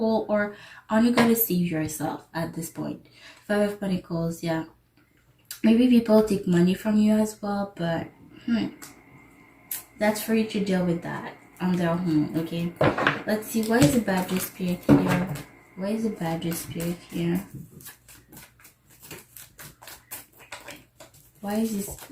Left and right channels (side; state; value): both; identical; correlation 1.00